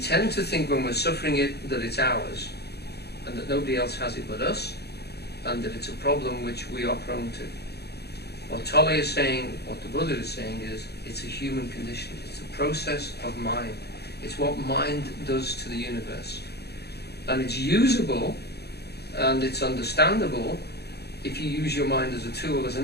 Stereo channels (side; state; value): right; late; 0.48 ms